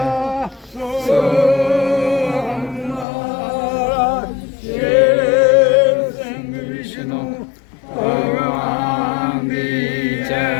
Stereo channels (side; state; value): right; drops out; at 3.1 s